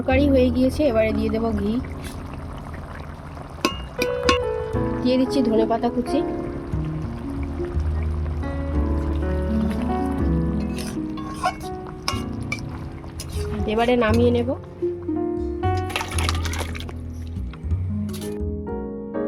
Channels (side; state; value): both; identical; correlation 1.00